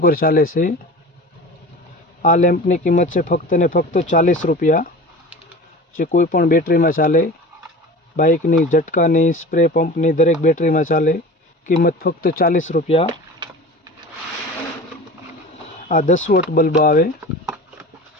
चाले से। आ लैम्पनी किंमत है फक्त ने फक्त 40 रुपया, जे कोईपण बेटरी में चाले। बाइकनी, झटकानी, स्प्रे पंपनी दरेक बेटरी में चाले। किंमत फक्त 40 रुपया। आ 10 वोल्ट बल्ब आवे,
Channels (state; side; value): normal; both; correlation 0.36